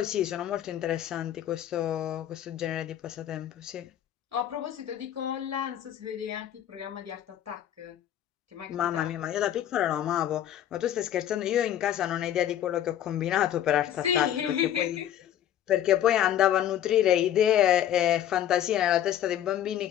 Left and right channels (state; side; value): quieter; right; 11.1 dB